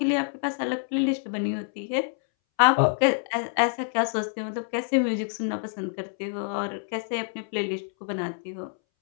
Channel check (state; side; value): silent; right; 60 dB below the other